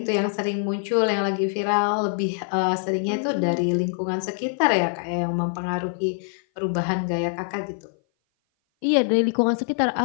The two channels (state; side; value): silent; right; 57 dB below the other